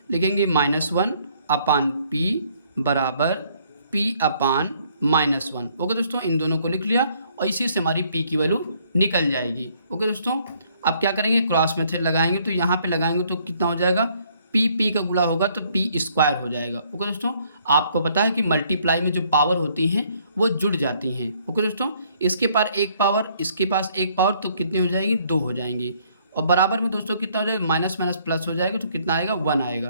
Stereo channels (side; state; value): both; inverted; correlation -0.65